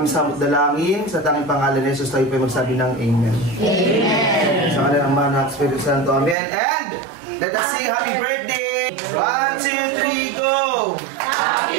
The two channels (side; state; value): left; drops out; at 6.4 s